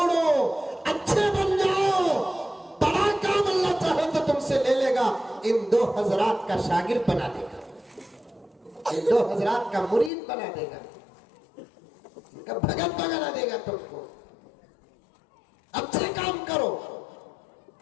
अच्छे बन जाओ। बड़ा काम अल्लाह चाहे तो तुमसे ले लेगा, इन दो हजरात का शागिर्द बना देगा, इन दो हजरात का मुरीद बना देगा, इनका भगत बना देगा तुमको। अच्छे काम करो।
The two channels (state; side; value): drops out; right; at 10.1 s